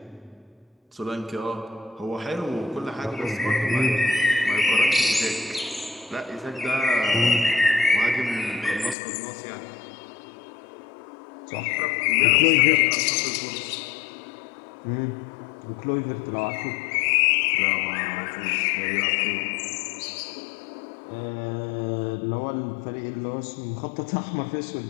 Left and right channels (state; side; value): drops out; right; at 9.0 s